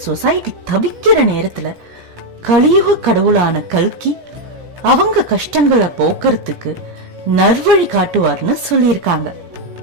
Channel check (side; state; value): left; late; 17 ms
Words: சொசைட்டி தவிக்கிற நேரத்துல கலியுக கடவுளான கல்கி அவங்க கஷ்டங்களை போக்குறதுக்கு நல்வழி காட்டுவார்னு சொல்லியிருக்காங்க.